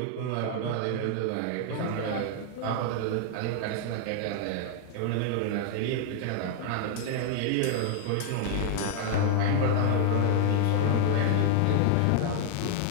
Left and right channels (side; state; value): both; different; correlation 0.00